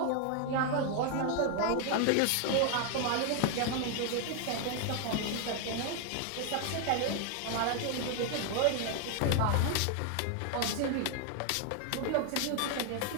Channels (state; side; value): different; both; correlation 0.00